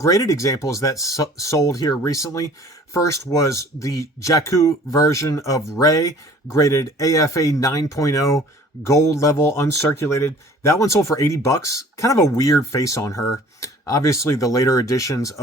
examples that sold here recently. First was the Jakku version of Rey, graded AFA 9.0, gold level, uncirculated. That one sold for 80 bucks. Kind of a weird face on her. Obviously, the later editions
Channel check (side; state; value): both; normal; correlation 0.50